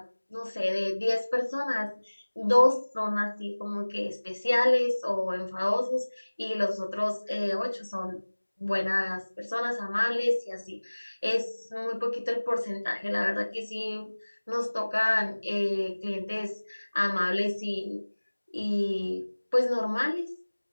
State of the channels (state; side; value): inverted; both; correlation -1.00